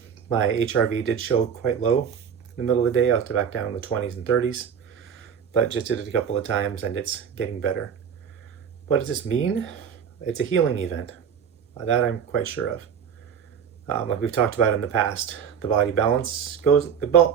HRV did show quite low in the middle of the day. I was back down in the 20s and 30s, but just did it a couple of times, and it's getting better. What does this mean? It's a healing event. That I'm quite sure of. Like we've talked about in the past, the body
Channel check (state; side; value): quieter; left; 7.5 dB